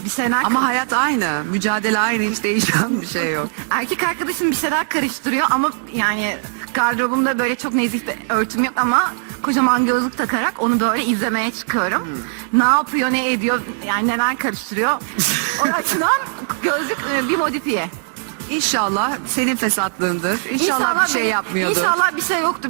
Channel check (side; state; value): left; silent; 66 dB below the other